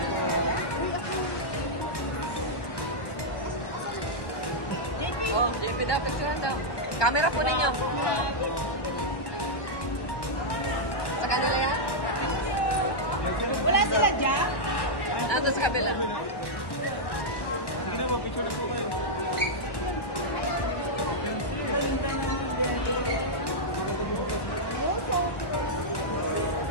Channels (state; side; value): late; right; 1.1 ms